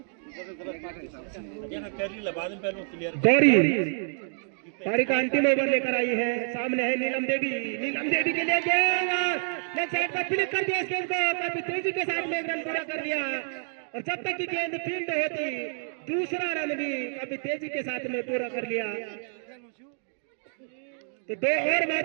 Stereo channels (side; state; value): left; silent; digital silence